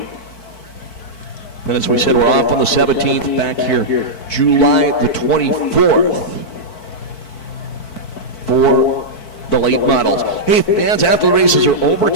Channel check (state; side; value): late; right; 4.5 ms